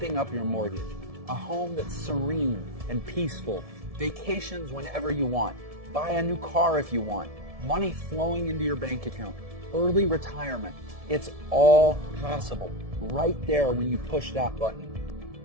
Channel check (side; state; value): left; late; 1.7 ms